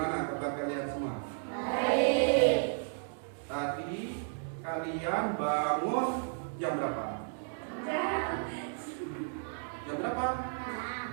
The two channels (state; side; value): silent; left; digital silence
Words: kabar kalian semua? Baik. Tadi kalian bangun jam berapa? Jam berapa?